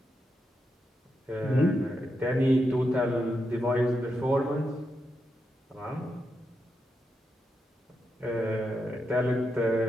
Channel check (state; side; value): normal; both; correlation 0.85